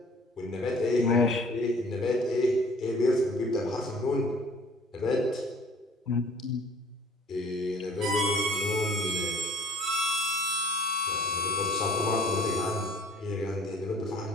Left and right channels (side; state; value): both; normal; correlation 0.52